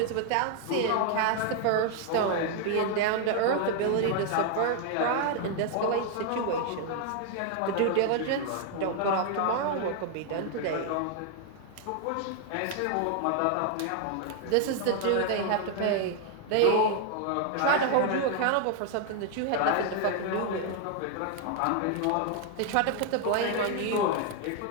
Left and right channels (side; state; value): both; different; correlation 0.00